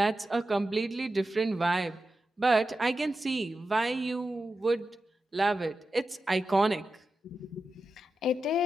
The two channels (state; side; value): normal; both; correlation 0.91